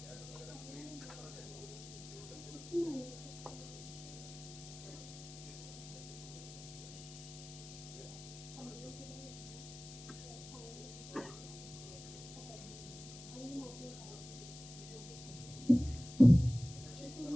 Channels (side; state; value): left; noise; hiss, 14 dB below the sound